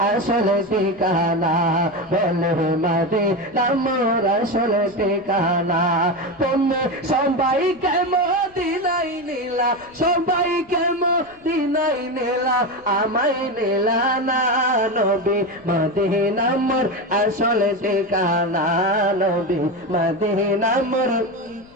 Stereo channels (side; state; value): left; noise; rumble, 29 dB below the sound